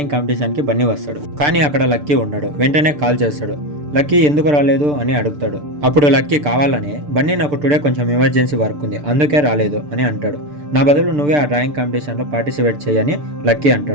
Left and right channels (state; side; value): late; left; 6.8 ms